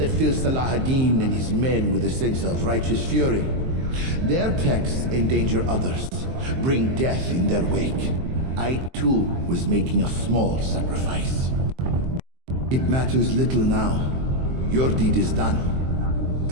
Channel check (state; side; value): late; left; 23 ms